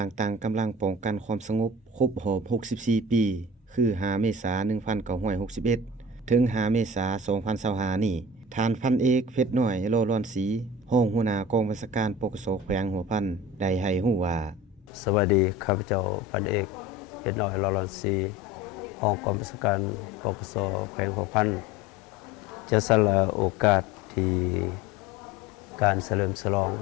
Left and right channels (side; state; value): both; normal; correlation 0.37